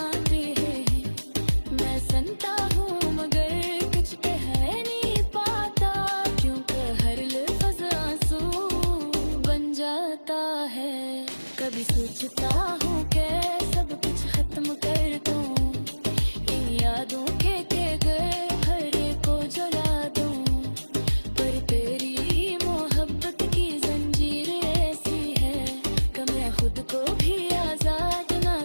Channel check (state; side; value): inverted; both; correlation -1.00